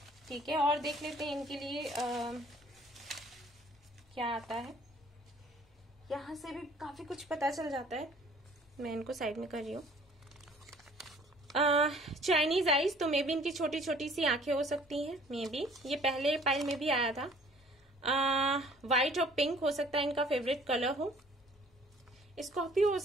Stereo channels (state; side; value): normal; both; correlation 0.54